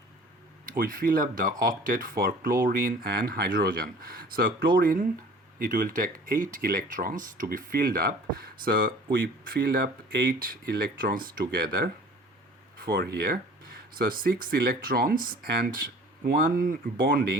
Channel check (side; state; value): both; normal; correlation 0.47